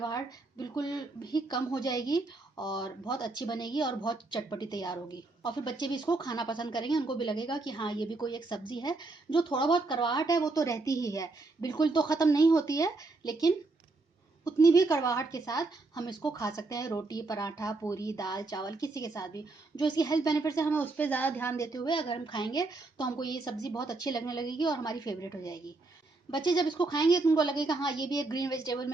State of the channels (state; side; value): quieter; left; 3.4 dB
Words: बिल्कुल भी कम हो जाएगी और बहुत अच्छी बनेगी और बहुत चटपटी तैयार होगी। और फिर बच्चे भी इसको खाना पसंद करेंगे, उनको भी लगेगा कि हाँ, ये भी कोई एक सब्ज़ी है। जो थोड़ा बहुत कड़वाहट है वो तो रहती ही है, बिल्कुल तो ख़त्म नहीं होती है, लेकिन उतनी भी कड़वाहट के साथ हम इसको खा सकते हैं रोटी, पराठा, पूरी, दाल, चावल किसी के साथ भी। जो इसकी हेल्थ बेनिफिट्स है हमें उस पर ज़्यादा ध्यान देते हुए अगर हम खाएंगे तो हमको ये सब्ज़ी बहुत अच्छी लगने लगेगी और हमारी फेवरेट हो जाएगी। बच्चे जब इसको खाएंगे तो उनको लगेगा हाँ, ये भी एक ग्रीन वेजिटेबल